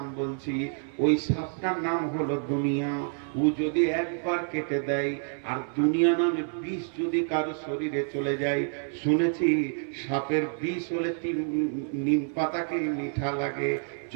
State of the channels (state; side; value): silent; left; 59 dB below the other